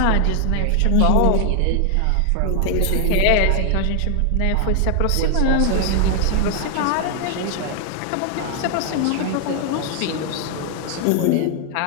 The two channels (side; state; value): both; different; correlation 0.00